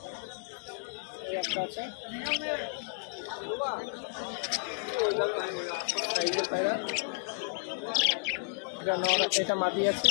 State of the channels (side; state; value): right; silent; digital silence